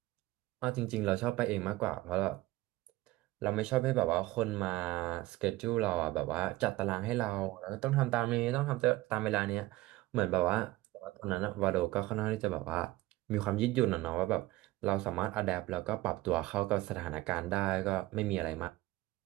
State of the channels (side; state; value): left; quieter; 17.9 dB